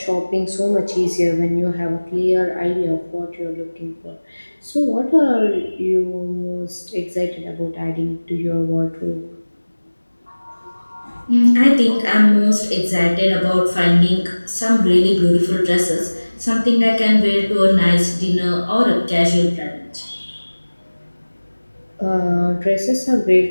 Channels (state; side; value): inverted; both; correlation -1.00